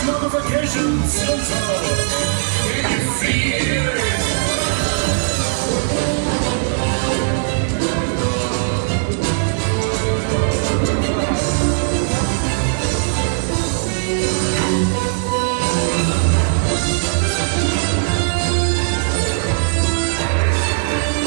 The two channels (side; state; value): left; silent; digital silence